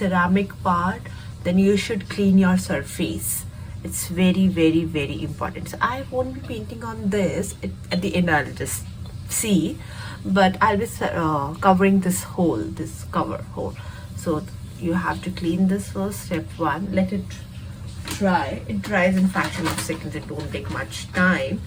part, then you should clean your surface. It's very important. So I won't be painting on this. At the end I'll just see, but I'll be covering this hole, this cover hole. So you have to clean this first. Step one, let it dry. It dries in fraction of seconds. It won't take much time.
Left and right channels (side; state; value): both; identical; correlation 1.00